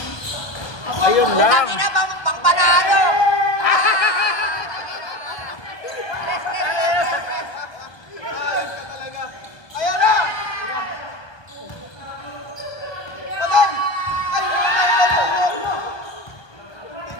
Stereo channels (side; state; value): right; late; 1.2 ms